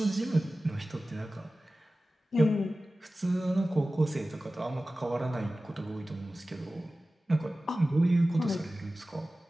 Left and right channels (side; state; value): both; normal; correlation 0.96